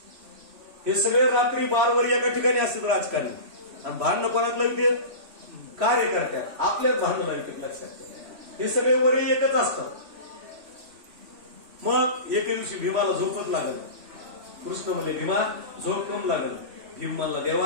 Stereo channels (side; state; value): left; late; 3.1 ms